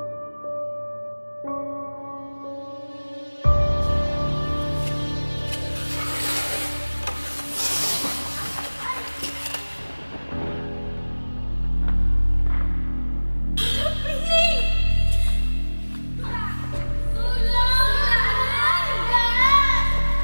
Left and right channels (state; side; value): inverted; both; correlation -1.00